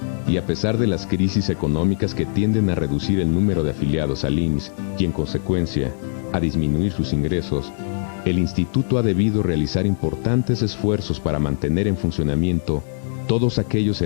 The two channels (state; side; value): silent; right; 65 dB below the other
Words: y a pesar de las crisis económicas que tienden a reducir el número de afiliados al IMSS y en consecuencia a disminuir sus ingresos, el instituto ha debido realizar importantes esfuerzos para mantener en funcionamiento todos aquellos